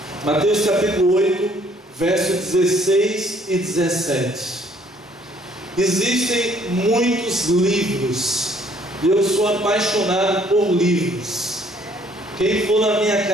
Mateus capítulo 8, versos 16 e 17. Existem muitos livros, e eu sou apaixonado por livros. Quem for na minha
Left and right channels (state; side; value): normal; both; correlation 0.62